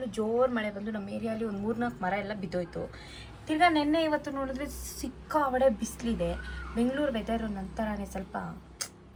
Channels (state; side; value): identical; both; correlation 1.00